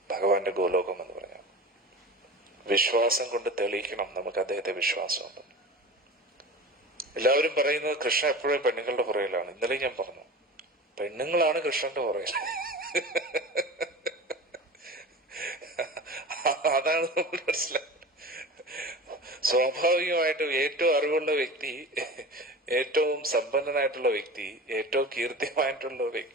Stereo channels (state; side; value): normal; both; correlation 0.34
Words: ഭഗവാന്റെ ഗോലോകം എന്ന് പറഞ്ഞാൽ. വിശ്വാസം കൊണ്ട് തെളിയിക്കണം നമുക്ക് അദ്ദേഹത്തെ വിശ്വാസമുണ്ട്. എല്ലാവരും പറയുന്നത് കൃഷ്ണൻ എപ്പോഴും പെണ്ണുങ്ങളുടെ പുറകിലാണ്. ഇന്നലെ ഞാൻ പറഞ്ഞു, പെണ്ണുങ്ങളാണ് കൃഷ്ണന്റെ പുറകിൽ. അതാണ് നമ്മൾ മനസ്സിലാക്കുന്നത്. സ്വാഭാവികമായിട്ടും ഏറ്റവും അറിവുള്ള വ്യക്തി, ഏറ്റവും സമ്പന്നനായിട്ടുള്ള വ്യക്തി, ഏറ്റവും കീർത്തിമായിട്ടുള്ള